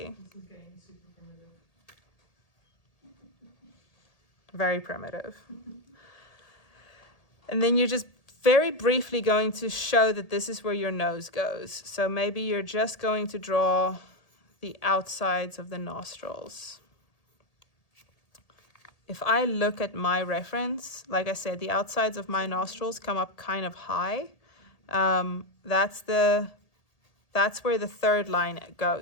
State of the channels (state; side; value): late; right; 1.8 ms